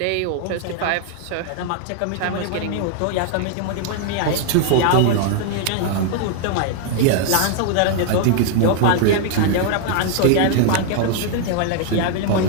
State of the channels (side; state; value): both; different; correlation 0.00